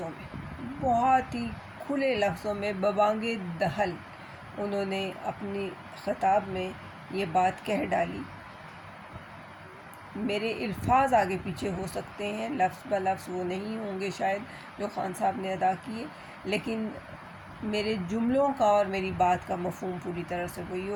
میں، بہت ہی کھلے لفظوں میں ببانگ دہل انہوں نے اپنی خطاب میں یہ بات کہہ ڈالی۔ میرے الفاظ آگے پیچھے ہو سکتے ہیں، لفظ بہ لفظ وہ نہیں ہوں گے شاید جو خان صاحب نے ادا کیے، لیکن میرے جملوں کا اور میری بات کا مفہوم پوری طرح سے وہی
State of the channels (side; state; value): both; identical; correlation 1.00